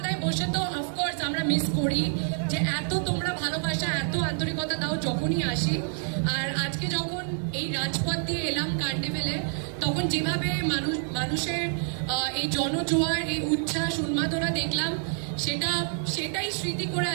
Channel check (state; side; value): silent; left; 57 dB below the other